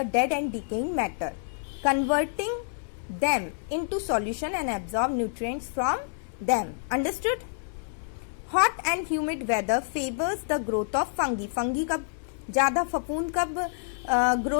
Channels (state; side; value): silent; right; 59 dB below the other